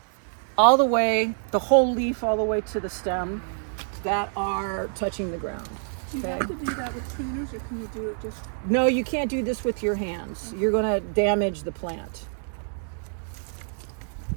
all the way, the whole leaf all the way to the stem that are touching the ground. Do you have to do that with pruners, or can you do it just... No, you can't do this with your hands. You're gonna damage the plant.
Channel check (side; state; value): left; silent; digital silence